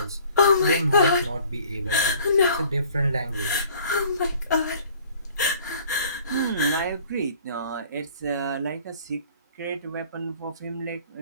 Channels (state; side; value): inverted; both; correlation -0.53